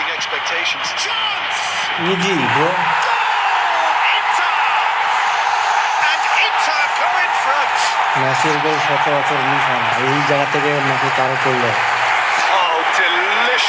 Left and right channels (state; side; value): identical; both; correlation 1.00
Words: expectations. Chance! Easy, bro. Goal! Inter! And Inter go in front. মেসির গোল সচরাচর মিস হয় না, এই জায়গা থেকে মেসি তারও করলো। Oh,